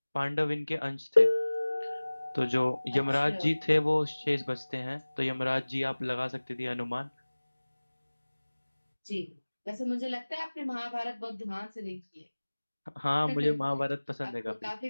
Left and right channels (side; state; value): both; inverted; correlation -1.00